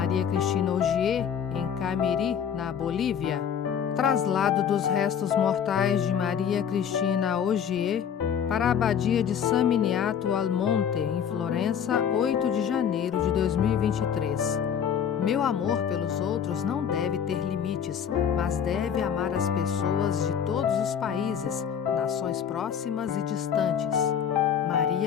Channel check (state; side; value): quieter; right; 8.1 dB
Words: Cristina Ogier em Camiri, na Bolívia, traslado dos restos mortais de Maria Cristina Ogier para a Abadia de San Miniato al Monte, em Florença, 8 de janeiro de 2023. Meu amor pelos outros não deve ter limites, mas deve amar as pessoas de todos os países, nações próximas e distantes.